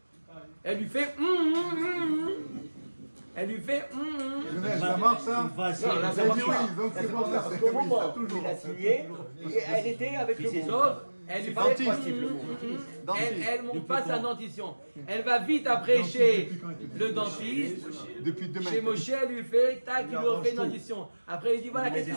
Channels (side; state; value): both; inverted; correlation -1.00